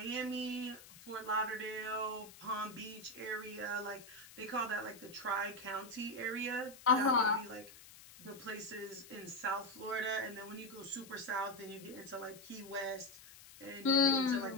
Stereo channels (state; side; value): noise; left; hiss, 19 dB below the sound